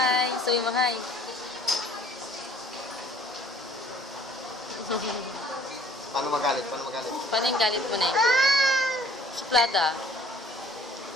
sabi mo hi. Paano magalit? Paano magalit? Paano yung galit mo na eh? Suplada.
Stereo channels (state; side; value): normal; both; correlation 0.56